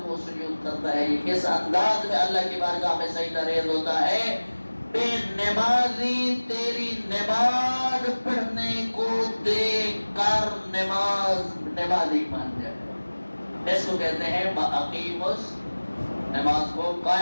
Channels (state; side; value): inverted; both; correlation -1.00